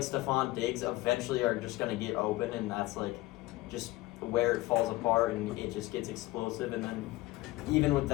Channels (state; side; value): quieter; right; 19.0 dB